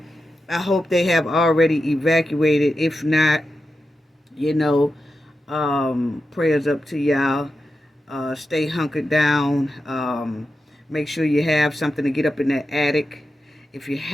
I hope they have already evacuated. If not, prayers up to y'all. Stay hunkered down. Make sure you have something to get up in that attic. If you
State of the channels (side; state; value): both; normal; correlation 0.90